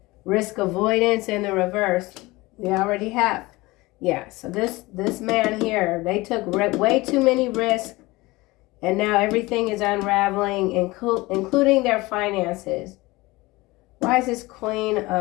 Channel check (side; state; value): right; quieter; 21.4 dB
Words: risk avoidance in the reverse. We already have. Yeah, so this man here, they took way too many risks, and now everything is unraveling, including their finances. Why is this Queen